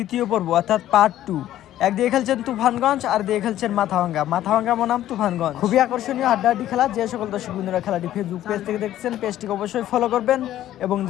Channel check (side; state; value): right; quieter; 12.9 dB